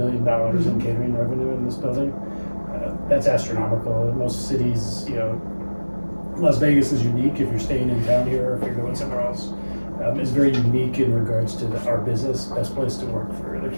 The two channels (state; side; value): inverted; both; correlation -1.00